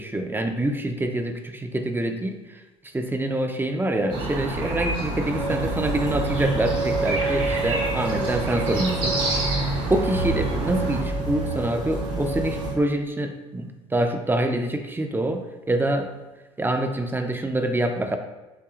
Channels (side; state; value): both; normal; correlation 0.68